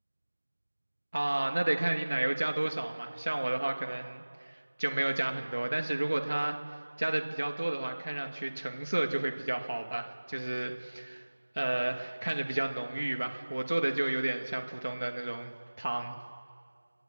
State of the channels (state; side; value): inverted; both; correlation -1.00